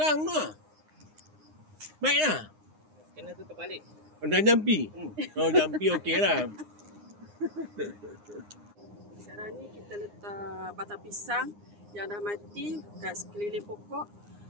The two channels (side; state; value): left; late; 9.7 ms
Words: tu lah. Baiklah. Kena tutup balik. Dah jampi. Oh, jampi okey lah. Sekarang ni kita letak batang pisang yang dah mati kat sekeliling pokok,